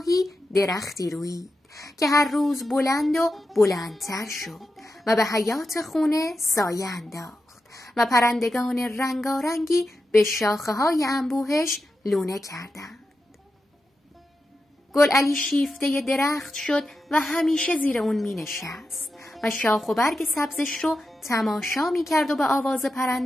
درختی رویید که هر روز بلند و بلندتر شد و به حیات خونه سایه انداخت و پرندگان رنگارنگی به شاخه‌های انبوهش لونه کردند. گلعلی شیفته درخت شد و همیشه زیر اون می نشست و شاخ و برگ سبزش رو تماشا می کرد و به آواز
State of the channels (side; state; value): both; normal; correlation 0.89